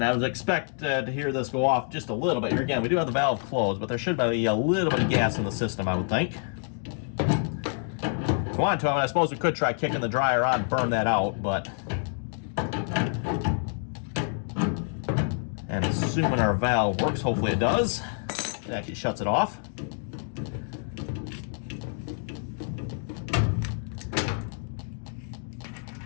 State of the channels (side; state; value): right; silent; 60 dB below the other